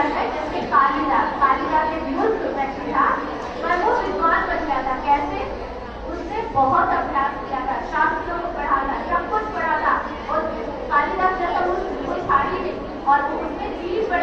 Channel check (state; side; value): identical; both; correlation 1.00